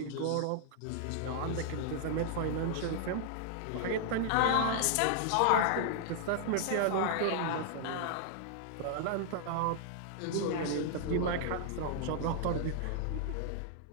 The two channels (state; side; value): different; both; correlation -0.01